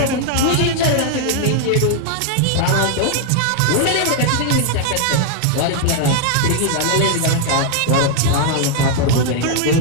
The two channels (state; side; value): different; both; correlation 0.00